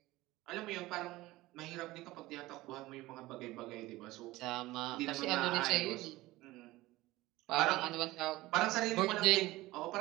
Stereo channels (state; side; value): quieter; left; 18.5 dB